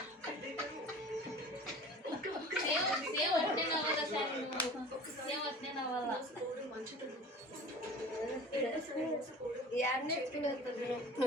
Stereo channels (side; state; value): both; normal; correlation 0.42